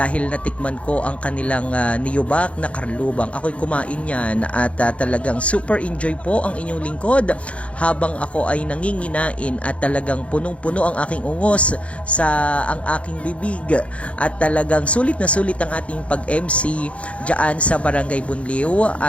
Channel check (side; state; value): right; late; 0.063 ms